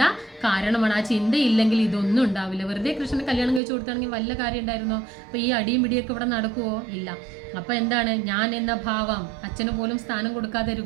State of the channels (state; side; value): drops out; left; at 3.6 s